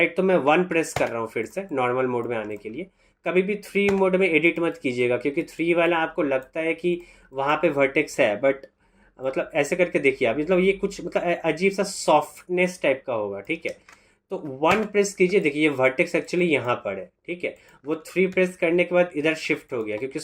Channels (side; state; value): both; identical; correlation 1.00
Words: तो मैं 1 प्रेस कर रहा हूँ फिर से नॉर्मल मोड में आने के लिए। कभी भी 3 मोड में एडिट मत कीजिएगा, क्योंकि 3 वाला आपको लगता है कि वहाँ पे वर्टेक्स है, बट मतलब ऐसे करके देखिए आप, मतलब ये कुछ मतलब अजीब सा सॉफ्टनेस टाइप का होगा, ठीक है। तो 1 प्रेस कीजिए, देखिए ये वर्टेक्स एक्चुअली यहाँ पर है, ठीक है। वो 3 प्रेस करने के बाद इधर शिफ्ट हो गया, क्योंकि